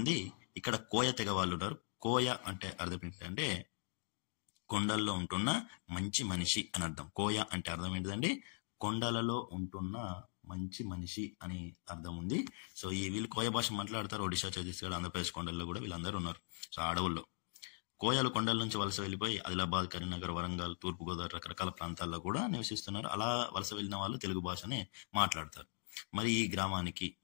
ఇక్కడ కోయ తెగ వాళ్ళు ఉన్నారు. కోయ అంటే అర్థం ఏంటంటే కొండల్లో ఉంటున్న మంచి మనిషి అని అర్థం. కోయ అంటే అర్థం ఏంటిదండి? కొండలలో ఉంటున్న మంచి మనిషి అని అర్థం ఉంది. సో ఈ వీళ్ళు కోయ భాష మాట్లాడతారు. ఒడిశా, ఛత్తీస్గఢ్, ఆంధ్రప్రదేశ్ కొండల్లో కూడా వీళ్ళందరూ ఉన్నారు. సో అడవుల్లో కోయలు కొండల నుంచి వలస వెళ్ళిపోయి ఆదిలాబాద్, కరీంనగర్, వరంగల్, తూర్పుగోదావరి రకరకాల ప్రాంతాల్లో కూడా నివసిస్తున్నారు. అలా వలస వెళ్ళిన వాళ్ళు తెలుగు భాషనే మాట్లాడతారు. మరి ఈ గ్రామానికి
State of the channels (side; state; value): right; silent; 51 dB below the other